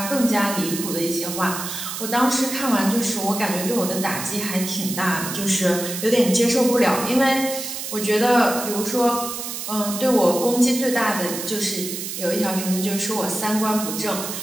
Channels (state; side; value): noise; right; hiss, 6 dB below the sound